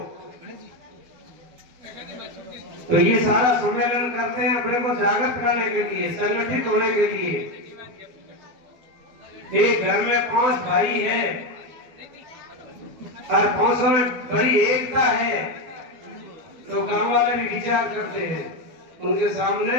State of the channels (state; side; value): late; left; 12 ms